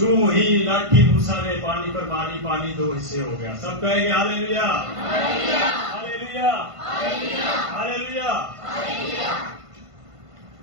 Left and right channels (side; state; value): left; late; 1.5 ms